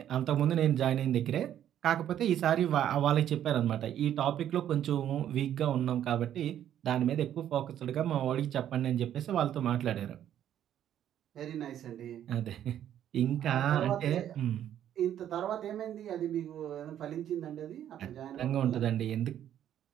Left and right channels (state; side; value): quieter; left; 10.7 dB